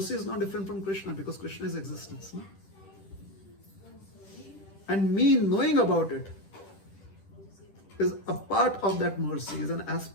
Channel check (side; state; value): right; late; 10 ms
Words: is not different from Krishna, because Krishna is existence. No? And me knowing about it is a part of that mercy, is an